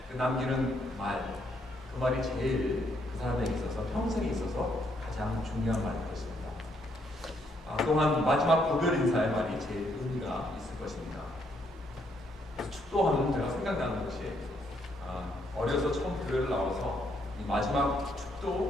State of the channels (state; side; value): normal; both; correlation 0.73